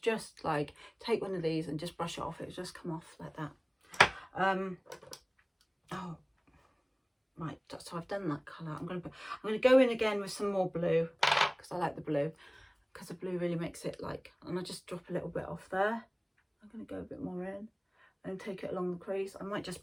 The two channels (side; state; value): both; identical; correlation 1.00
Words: just like take one of these and just brush it off. It'll just come off like that. Oh, right. So I've done that colour. I'm going to go in again with some more blue, because I like the blue, because the blue really makes it like, and I just drop a little bit off there. I'm going to go a bit more in and take it along the crease. I might just